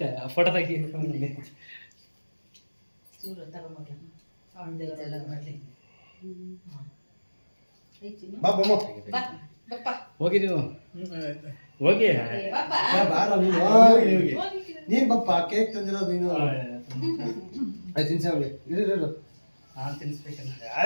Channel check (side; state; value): both; inverted; correlation -1.00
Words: ಫೋಟೋ ತೆಗಿ ಚೂರು ತಗೊಂಡ್ಲ ಅವನ ದೇವರೆಲ್ಲ ಮಾಡ್ಲಿ ಹೋಗಿ ನೀವು ಹೋಗಿ ನೀನ್ ಬಪ್ಪ ಕೇಕ್ ತಂದಿರೋದು ನೀನು ಆಯ್ತು ತಿನ್ಸವ್ಗೆ ಇರು ನಾನು ತಿನ್ನಿಸ್ಬೇಕಂತ